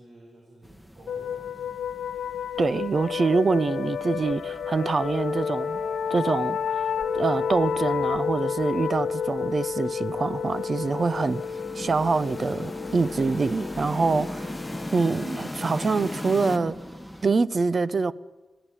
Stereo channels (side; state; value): both; normal; correlation 0.87